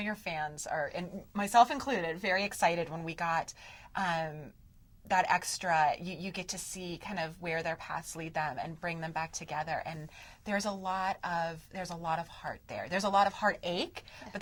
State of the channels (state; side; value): identical; both; correlation 1.00